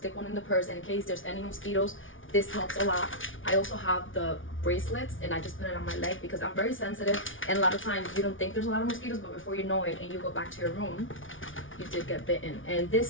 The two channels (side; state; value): right; late; 0.57 ms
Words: one in the purse, and in case there's any mosquitoes, this helps a lot. I also have the bracelets, and I just put it on my leg because I'm very sensitive, and a lot of times you don't think there's a lot of mosquitoes, but before you know it and you go back to your room, you did get bitten. And